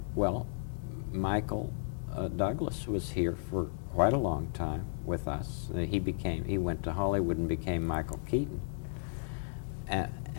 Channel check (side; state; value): right; silent; digital silence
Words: well, Michael Douglas was here for quite a long time with us. He went to Hollywood and became Michael Keaton.